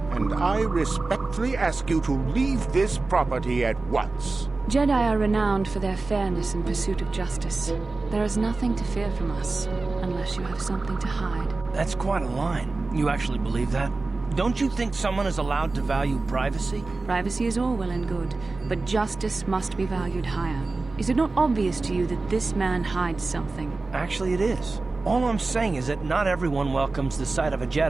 and I respectfully ask you to leave this property at once. Jedi are renowned for their fairness and pursuit of justice. There is nothing to fear from us, unless you have something to hide. That's quite a line. You actually believe that? Don't you think someone is allowed to value privacy? Privacy is all well and good, but justice must be valued higher. Is it not obvious to you that this man hides something? Actually, it is. All I'm saying is that not everyone welcomes the sight of a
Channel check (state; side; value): quieter; left; 3.5 dB